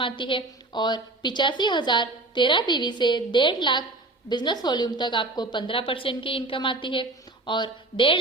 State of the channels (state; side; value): quieter; left; 3.0 dB